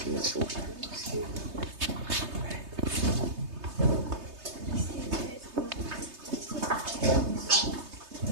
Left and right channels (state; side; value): late; left; 3.3 ms